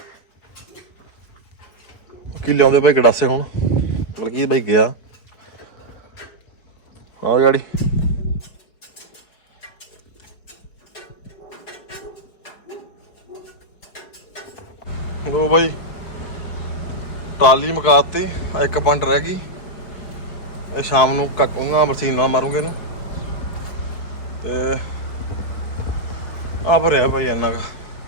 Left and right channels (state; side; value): late; right; 4.6 ms